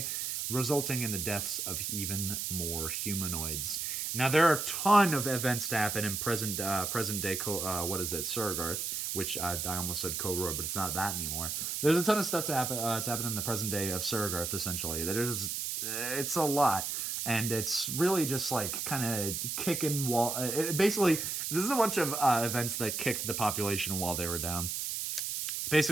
resulting in the deaths of even more humanoids. Now, there are a ton of events to happen in present day, Surregarth, which I almost said Koror, but it's not that anymore. There's a ton of stuff to happen in the present day of Surregarth, essentially. It's a lot, and it's really just like kind of kicking wall. Basically, this is a bunch of events that kicked the population while they were down.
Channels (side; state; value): right; noise; hiss, 2 dB below the sound